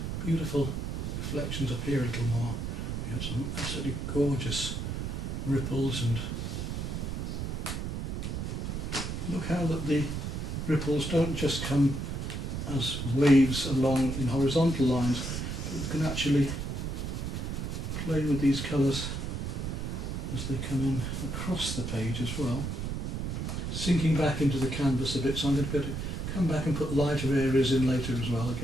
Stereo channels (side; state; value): right; noise; rumble, 3 dB below the sound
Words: beautiful reflections up here a little more. We have some absolutely gorgeous ripples, and look how that the ripples don't just come as waves along in horizontal lines, but you can actually play with these colours as they come in across the page as well. Sinking back into the canvas a bit, so I'm going to go to come back and put lighter areas in later as well